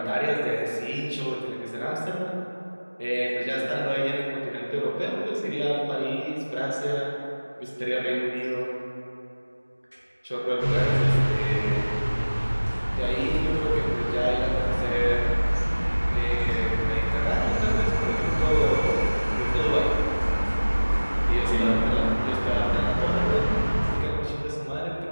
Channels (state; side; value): inverted; both; correlation -1.00